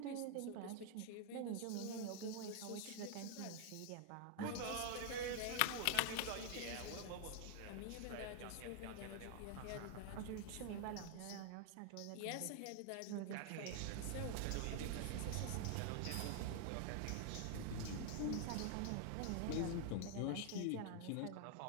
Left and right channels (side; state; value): both; different; correlation 0.00